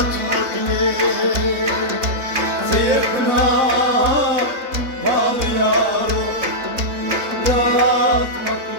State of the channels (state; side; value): late; left; 3.7 ms